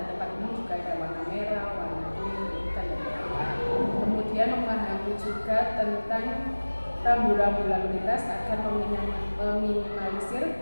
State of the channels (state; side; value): inverted; both; correlation -1.00